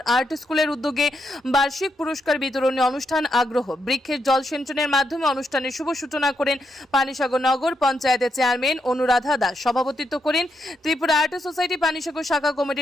আর্ট স্কুলের উদ্যোগে বার্ষিক পুরস্কার বিতরণী অনুষ্ঠান আগ্রহ বৃক্ষের জল সিঞ্চনের মাধ্যমে অনুষ্ঠানের শুভ সূচনা করেন পানিসাগর নগর পঞ্চায়েতের চেয়ারম্যান অনুরাধা দাস। সভাপতিত্ব করেন ত্রিপুরা আর্ট সোসাইটি পানিসাগর শাখা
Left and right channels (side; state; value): both; normal; correlation 0.81